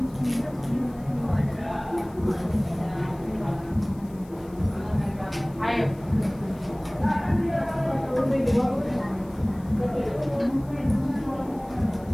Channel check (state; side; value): noise; left; hiss, 27 dB below the sound